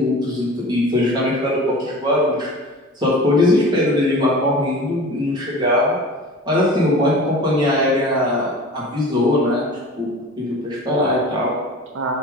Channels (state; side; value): normal; both; correlation 0.38